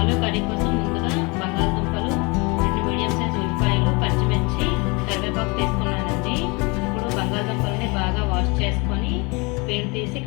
కర్రీ కోసం ముందుగా బంగాళదుంపలు, 2 మీడియం సైజ్ ఉల్లిపాయలు, పచ్చిమిర్చి, కరివేపాకు తీసుకున్నానండి. ఇప్పుడు బంగాళదుంపల్ని బాగా వాష్ చేసుకొని పీల్ తీసి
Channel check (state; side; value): quieter; right; 28.3 dB